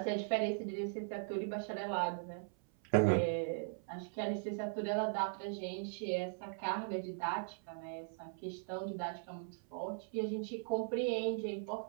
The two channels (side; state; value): left; silent; 52 dB below the other